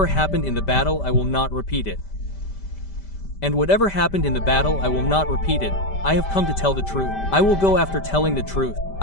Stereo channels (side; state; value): right; late; 5.1 ms